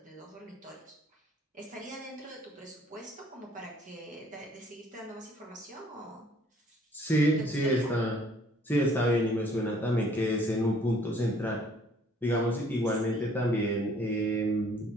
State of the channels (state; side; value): normal; both; correlation 0.60